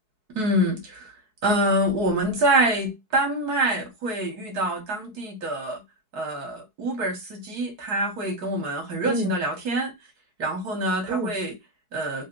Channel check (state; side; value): late; left; 4.7 ms